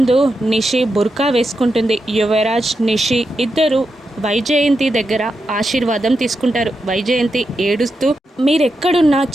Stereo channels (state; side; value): normal; both; correlation 0.87